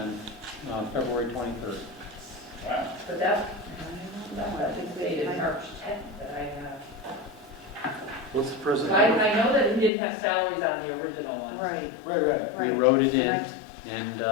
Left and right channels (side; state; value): right; drops out; at 9.9 s